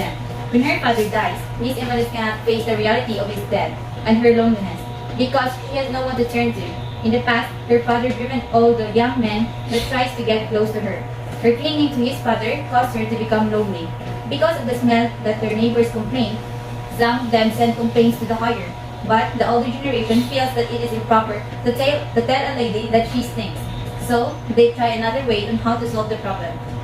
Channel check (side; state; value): both; identical; correlation 1.00